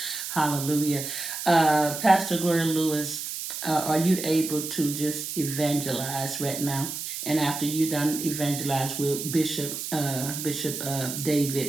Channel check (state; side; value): noise; right; hiss, 6 dB below the sound